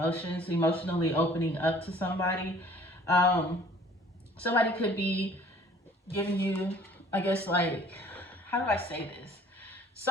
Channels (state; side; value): normal; both; correlation 0.53